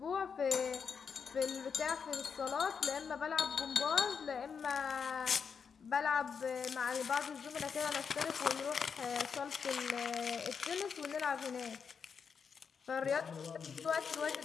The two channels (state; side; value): quieter; right; 6.3 dB